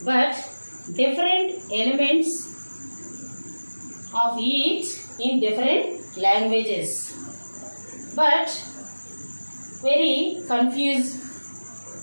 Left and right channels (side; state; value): both; inverted; correlation -1.00